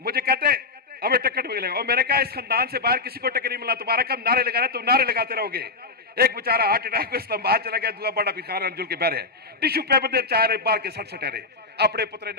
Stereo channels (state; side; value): quieter; right; 3.9 dB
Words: मुझे कहते हमें टिकट मिलेगा। और मैंने कहा इस खानदान से बाहर किसी को टिकट नहीं मिला, तुम्हारा कब नारे लगाना तुम नारे लगाते रहोगे। एक बेचारा हार्ट अटैक को इस्लामाबाद चला गया, दूसरा बड़ा भिखार अंजुल के बहरे टिश्यू पेपर दे चाह रहे बाहर के सट सटे रहे अपने पुत्र